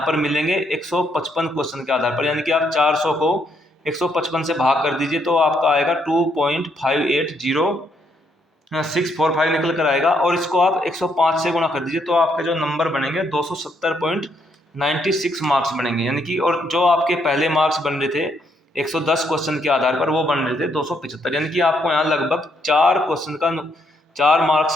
पर मिलेंगे 155 क्वेश्चन के आधार पर, यानी कि आप 400 को 155 से भाग कर दीजिए तो आपका आएगा 2.580 645 निकल कर आएगा, और इसको आप 105 से गुणा कर दीजिए तो आपके जो नंबर बनेंगे 270.96 मार्क्स बनेंगे, यानी कि और जो आपके पहले मार्क्स बन रहे थे 110 क्वेश्चन के आधार पर, वो बन रहे थे 275, यानी कि आपको यहाँ लगभग 4 मार्क्स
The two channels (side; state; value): both; normal; correlation 0.74